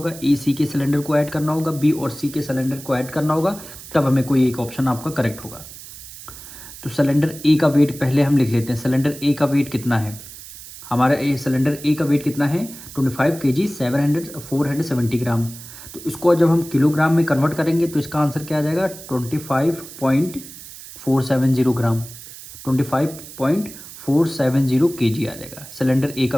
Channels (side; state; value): right; noise; hiss, 15 dB below the sound